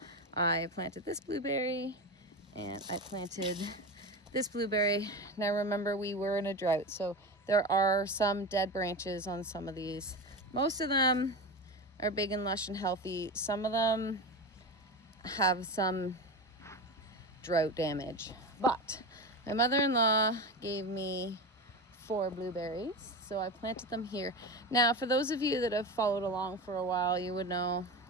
I planted this blueberry and I planted this blueberry. Now remember, we were in a drought, so there are some dead branches on some of these. Most of them are big and lush and healthy. Some of them have some drought damage. But my mother-in-law gave me 4 blueberries, so I planted them here. Now, for those of you that have followed along for a while, you would know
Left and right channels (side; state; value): both; normal; correlation 0.23